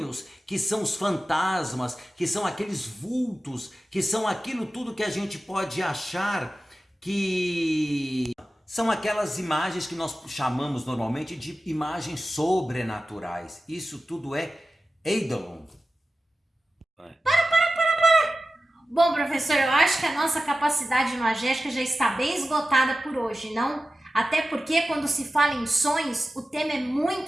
que são os fantasmas, que são aqueles vultos, que são aquilo tudo que a gente pode achar que... São aquelas imagens que nós chamamos normalmente de imagens sobrenaturais. Isso tudo é eidolon. Para! Bom, professor, eu acho que a nossa capacidade imagética já está bem esgotada por hoje, não? Até porque quando se fala em sonhos, o tema é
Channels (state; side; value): normal; both; correlation 0.94